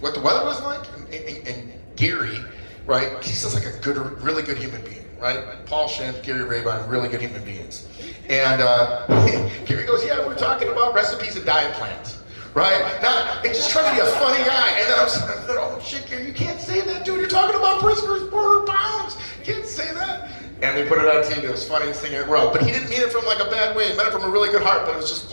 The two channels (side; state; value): both; inverted; correlation -1.00